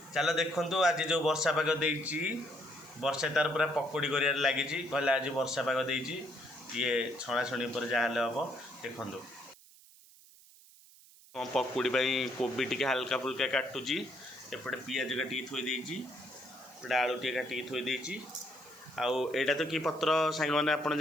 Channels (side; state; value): right; noise; hiss, 24 dB below the sound